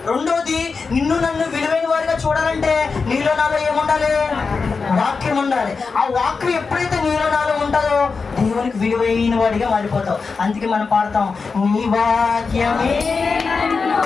రెండోది, నిన్ను నన్ను విలువైన వారిగా చూడాలంటే నీలో నాలో ఏముండాలి? వాక్యం ఉండాలి. ఆ వాక్యం ఎప్పుడైతే నీలో నాలో ఉంటుందో దేవునికి విలువైన వాడిగా మారిపోతావు. అందుకే మనం పాడతాం, నీ వాక్యమే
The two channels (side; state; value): right; quieter; 4.8 dB